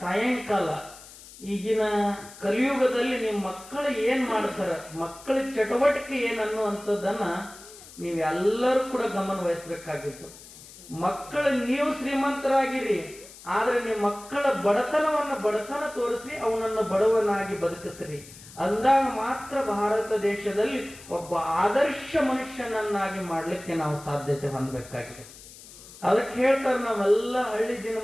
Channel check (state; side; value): noise; left; hiss, 18 dB below the sound